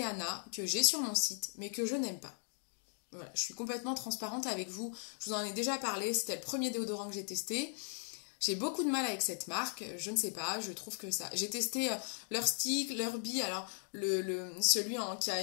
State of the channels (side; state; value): right; silent; 53 dB below the other